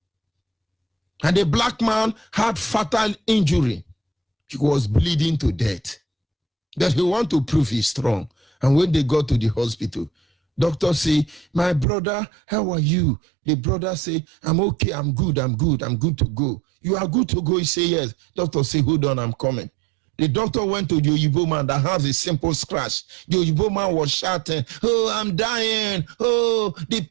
And the black man had fatal injury. He was bleeding to death. That he want to prove he's strong. And when they got to the hospital, doctor say, my brother, how are you? The brother say, I'm okay, I'm good to go. You are good to go? He say, yes. Doctor say, hold on, I'm coming. The doctor went to the Oyibo man that has a simple scratch. The Oyibo man was shouting, oh, I'm dying. Oh, the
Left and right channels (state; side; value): drops out; left; at 11.9 s